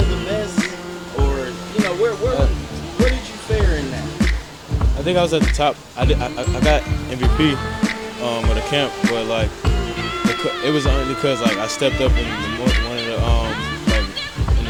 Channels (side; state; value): both; identical; correlation 1.00